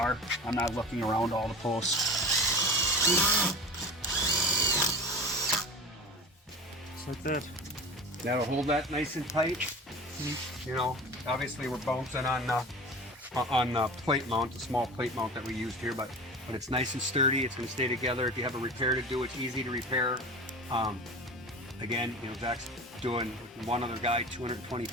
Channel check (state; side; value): normal; both; correlation 0.33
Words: I'm not looking around all the posts. Just like that. That'll hold that nice and tight. You know, obviously we're bouncing on the plate mount, the small plate mount that we used here, but it's nice and sturdy. It's going to stay together. If you have a repair to do, it's easy to repair. Again, you know, Zach's doing one other guy 220